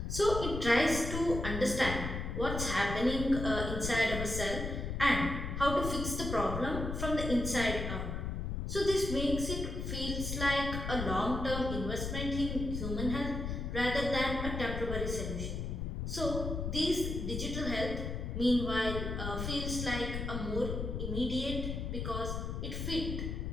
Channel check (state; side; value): noise; left; rumble, 4 dB below the sound